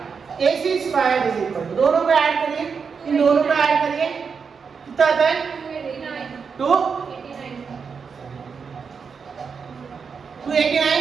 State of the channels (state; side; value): quieter; left; 5.8 dB